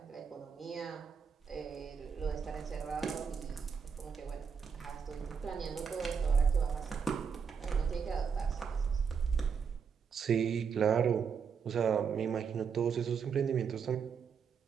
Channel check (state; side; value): quieter; left; 6.4 dB